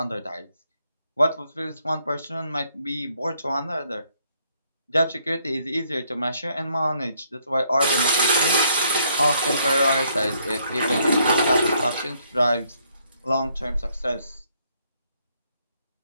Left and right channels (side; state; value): both; inverted; correlation -0.69